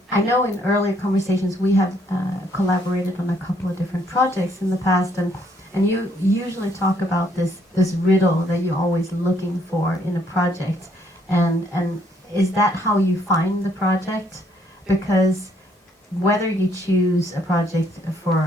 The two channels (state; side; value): normal; both; correlation 0.68